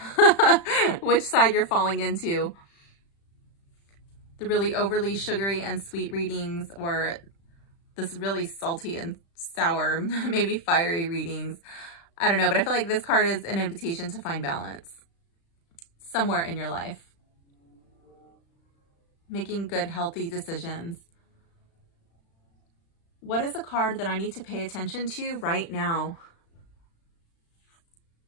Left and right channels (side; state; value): right; late; 36 ms